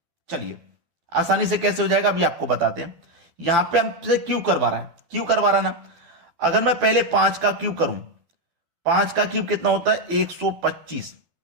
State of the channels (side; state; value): left; late; 12 ms